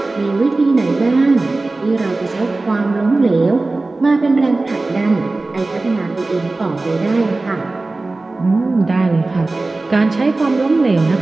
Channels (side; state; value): left; quieter; 3.2 dB